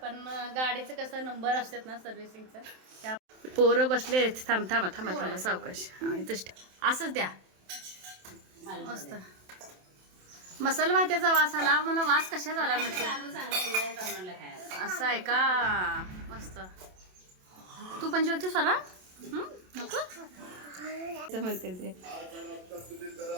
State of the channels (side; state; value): left; late; 27 ms